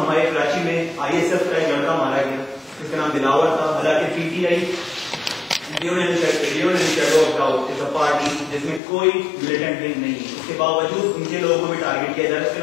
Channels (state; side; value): drops out; right; at 8.8 s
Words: کراچی میں ISF کا ایک لڑکا مارا گیا جس کا نام دلاور تھا, حالانکہ PTI پارٹی جس میں کوئی ملیٹنٹ لنک نہیں ہے, اس کے باوجود ان کے لوگوں کو بھی ٹارگیٹ کیا جا رہا ہے, اس کے